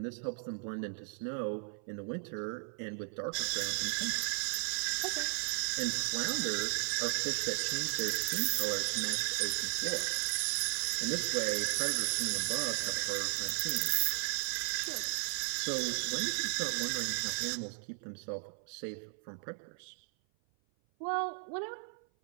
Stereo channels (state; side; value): silent; left; 54 dB below the other